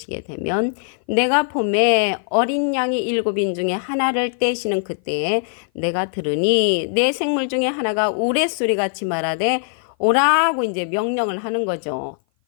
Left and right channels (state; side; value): silent; right; 57 dB below the other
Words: 되면 내가 봄에 어린 양이 일곱인 중에 하나를 떼시는 그때에 내가 들으니 내 생물 중에 하나가 우레소리같이 말하되 오라고 이제 명령을 하는 거죠.